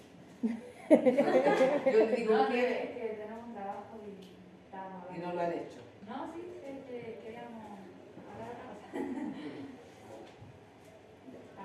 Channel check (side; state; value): both; identical; correlation 1.00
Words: Yo le digo No, que es que tenemos un trabajo y estábamos y hablando. no lo han hecho. No, sí, queríamos hablar de otra cosa.